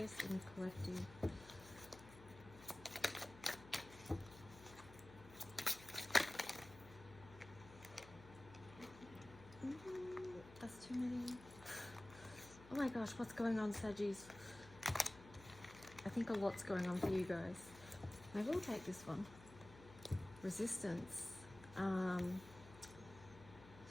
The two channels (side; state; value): left; noise; hum, 18 dB below the sound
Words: in the collective. That's too many. Oh my gosh, what's going on, Saggies? I think a lot's going on for you guys. Maybe we'll take this one. Resistance.